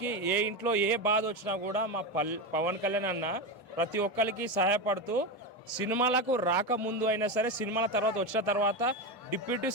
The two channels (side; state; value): both; normal; correlation 0.16